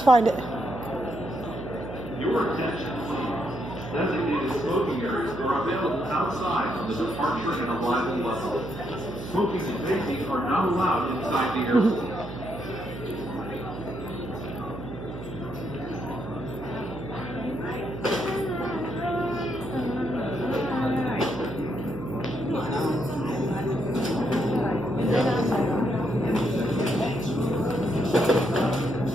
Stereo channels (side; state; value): right; noise; hum, 11 dB below the sound